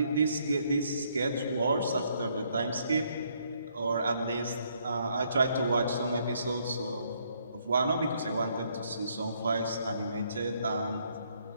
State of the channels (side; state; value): both; inverted; correlation -0.70